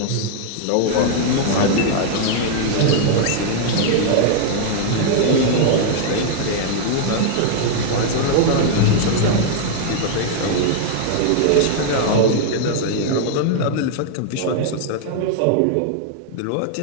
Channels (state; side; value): different; both; correlation 0.00